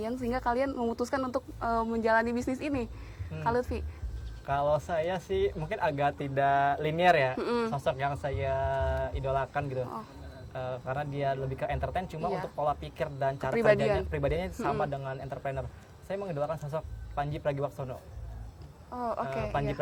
sehingga kalian memutuskan untuk menjalani bisnis ini? Kak Lutfi? Kalau saya sih mungkin agak tidak linear ya, sosok yang saya idolakan gitu. Oh. Karena dia lebih ke entertain, cuma Iya. untuk pola pikir dan cara Kepribadian. pribadiannya sama dengan entrepreneur. Saya mengidolakan sosok Panji Pragiwaksono. Oh oke. Panji iya.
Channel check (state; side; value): identical; both; correlation 1.00